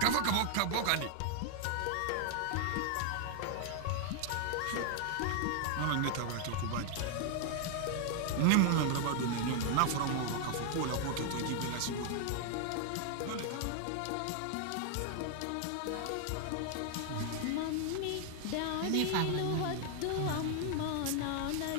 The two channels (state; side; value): different; both; correlation 0.00